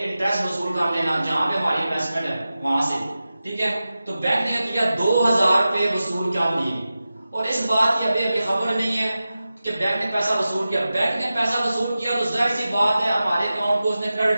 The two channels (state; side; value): inverted; both; correlation -0.94